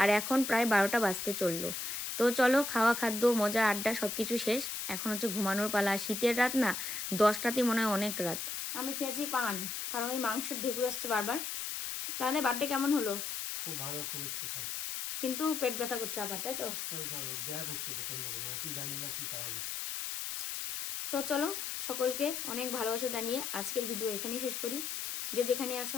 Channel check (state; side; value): noise; left; hiss, 4 dB below the sound